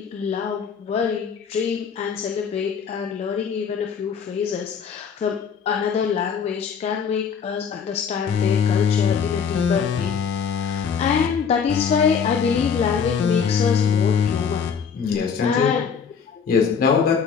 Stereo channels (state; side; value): quieter; right; 6.6 dB